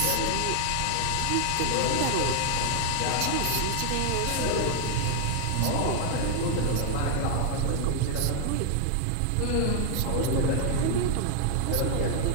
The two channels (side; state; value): both; different; correlation 0.00